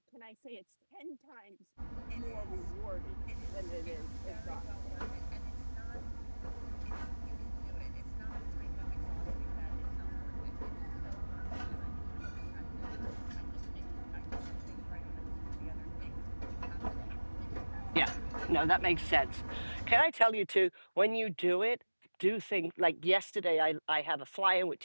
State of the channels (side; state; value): both; inverted; correlation -1.00